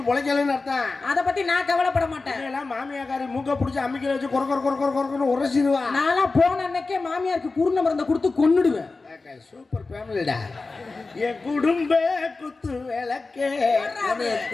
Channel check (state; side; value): quieter; right; 3.7 dB